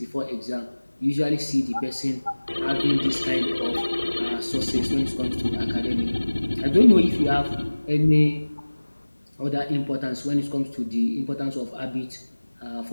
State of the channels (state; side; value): inverted; both; correlation -1.00